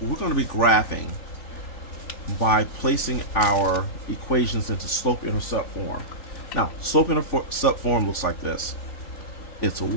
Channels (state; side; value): late; right; 3.5 ms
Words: going to be graphing by placing our equations into slope-intercept form. Now, slope-intercept form looks like this. It's